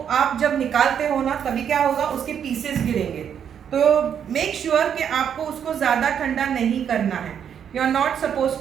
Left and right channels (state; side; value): quieter; left; 8.4 dB